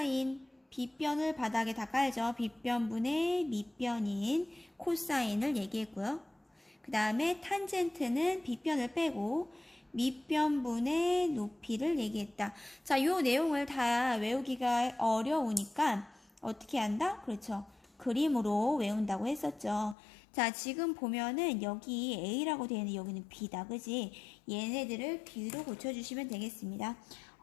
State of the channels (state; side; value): drops out; right; at 20.0 s